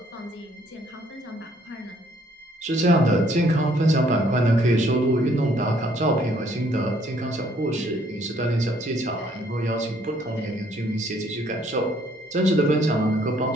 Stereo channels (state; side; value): normal; both; correlation 0.64